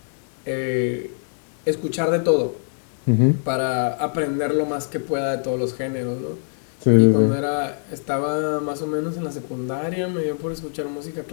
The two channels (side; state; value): right; silent; digital silence